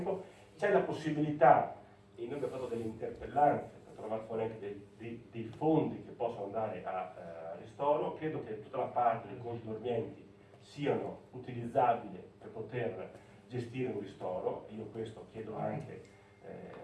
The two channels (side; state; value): both; identical; correlation 1.00